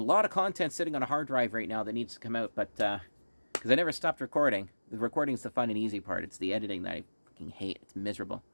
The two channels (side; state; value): both; inverted; correlation -1.00